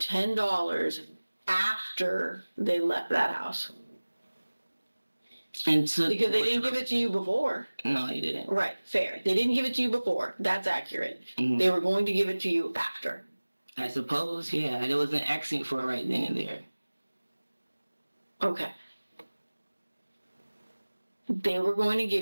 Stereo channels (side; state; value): both; inverted; correlation -1.00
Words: after they left that house. Because they didn't give it to you before. No, they didn't. Right, fair. They didn't give it to you before. That's accurate. Mm-hmm. They were going to give it to you after. I suppose, yeah. There was an accent for it right then and there. Okay. They were going to